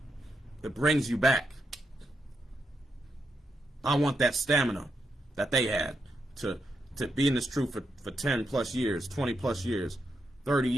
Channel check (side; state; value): both; normal; correlation 0.83